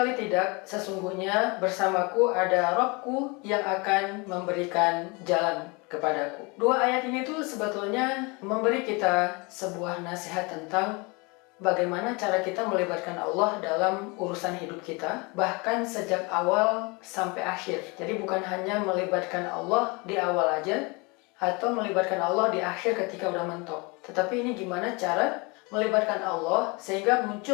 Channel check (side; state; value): right; quieter; 28.2 dB